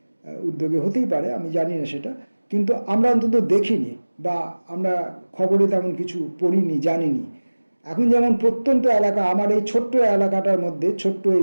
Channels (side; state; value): both; inverted; correlation -1.00